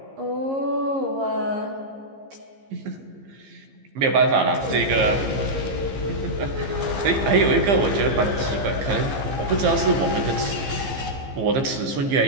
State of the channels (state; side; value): late; left; 15 ms